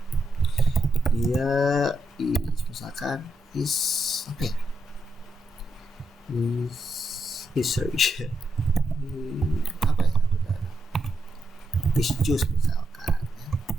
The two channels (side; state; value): both; normal; correlation 0.82